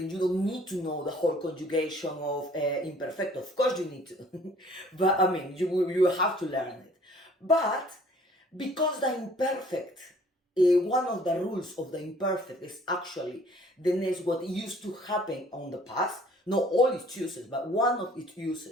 you don't need to know the whole conjugation of imperfecto. Of course you need to. But I mean, you have to learn it. But because the imperfect, one of the rules of the imperfect is actually what used to happen on the past. Not all its uses, but one of its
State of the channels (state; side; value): normal; both; correlation 0.56